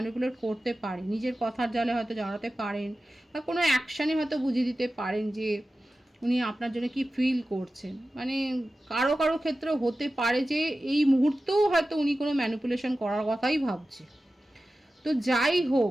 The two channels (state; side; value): normal; both; correlation 0.94